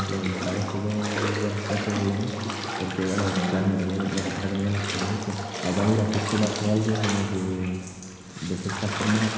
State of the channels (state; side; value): identical; both; correlation 1.00